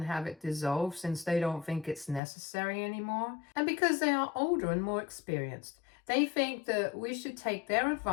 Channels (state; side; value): drops out; right; at 2.2 s